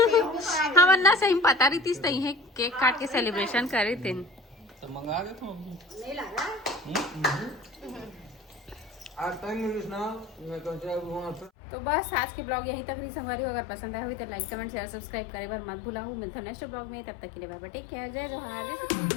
हम अन्ना सही में पता रही थी सही है केक काट के सेलिब्रेशन कर रहे थे तो मंगा दे तो तो बस आज के ब्लॉग यहीं तक रही संगवारी हो अगर पसंद आया हुई तो लाइक कमेंट शेयर सब्सक्राइब करे बार मत भूला मिलता नेक्स्ट ब्लॉग में तब तक के लिए बाय बाय टेक केयर जय जोहार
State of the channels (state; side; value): drops out; right; at 11.5 s